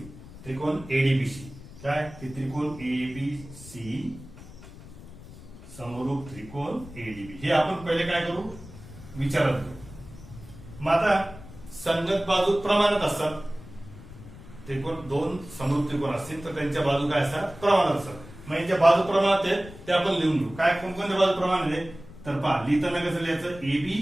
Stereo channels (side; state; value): left; noise; rumble, 17 dB below the sound